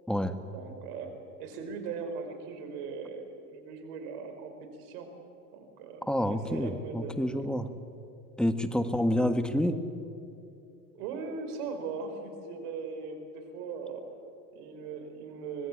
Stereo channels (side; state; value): both; normal; correlation 0.73